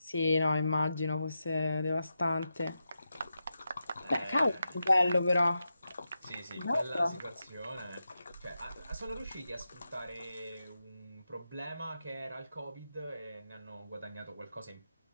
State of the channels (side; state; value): both; inverted; correlation -0.89